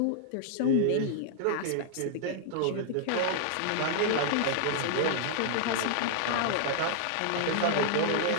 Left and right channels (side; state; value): both; different; correlation -0.01